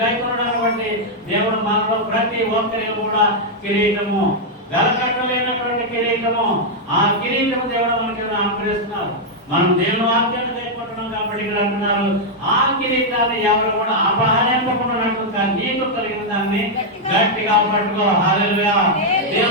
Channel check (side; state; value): both; normal; correlation -0.03